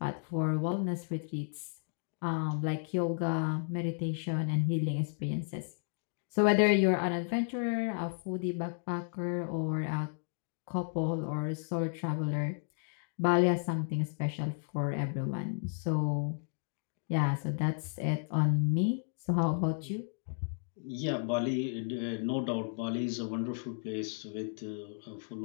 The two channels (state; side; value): silent; right; digital silence